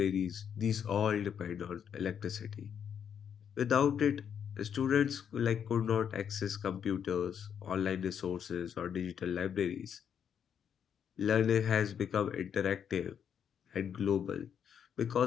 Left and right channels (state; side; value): quieter; right; 8.1 dB